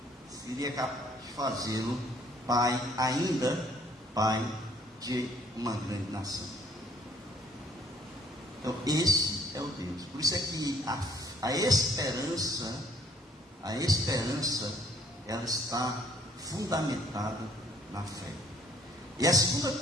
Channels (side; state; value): both; normal; correlation 0.60